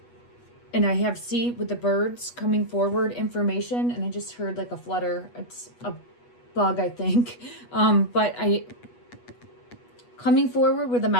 and I have with the birds coming forward information, and I just heard like a flutter. It's a bug, I think. But I coming forward with a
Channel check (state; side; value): late; right; 8.3 ms